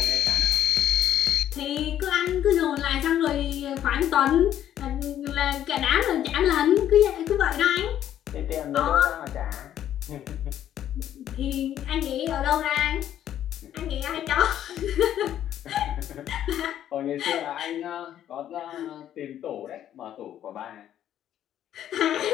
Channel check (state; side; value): quieter; right; 11.1 dB